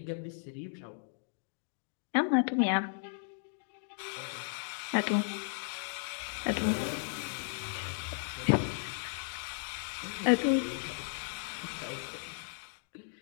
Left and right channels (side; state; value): right; silent; digital silence